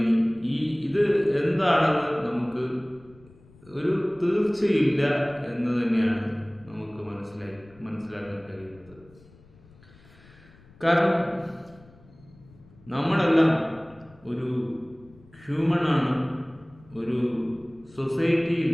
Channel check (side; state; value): left; noise; rumble, 26 dB below the sound